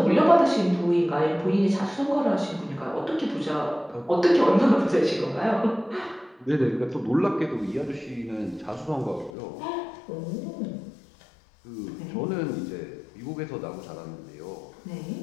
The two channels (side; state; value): right; drops out; at 9.3 s